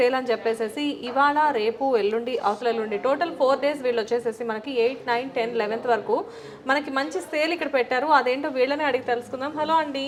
అని చెప్పేసేసి ఇవాళ, రేపు, ఎల్లుండి, అవతల ఎల్లుండి టోటల్ 4 డేస్ వీళ్ళు వచ్చేసేసి మనకి 8, 9, 10, 11th వరకు మనకి మంచి సేల్ ఇక్కడ పెట్టారు. అదేంటో వీళ్ళనే అడిగి తెలుసుకుందాం. హలో అండి.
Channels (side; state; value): both; identical; correlation 1.00